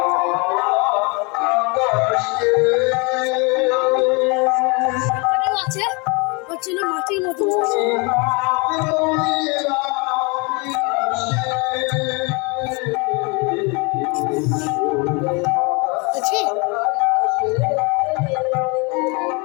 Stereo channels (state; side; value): quieter; right; 30.2 dB